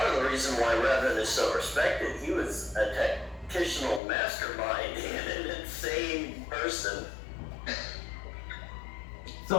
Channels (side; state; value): right; drops out; at 4.0 s